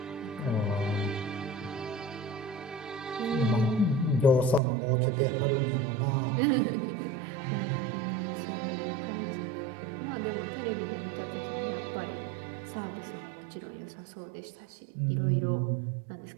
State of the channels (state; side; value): drops out; left; at 4.6 s